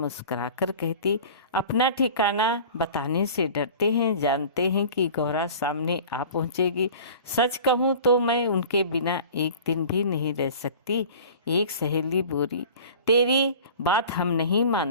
कहती, अपना ठिकाना बताने से डरते हैं, जानते हैं कि गौरा सामने आ पहुंचेगी। सच कहूँ तो मैं उनके बिना एक दिन भी नहीं रह सकती। एक सहेली बोली, तेरी बात हम नहीं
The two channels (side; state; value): both; inverted; correlation -0.41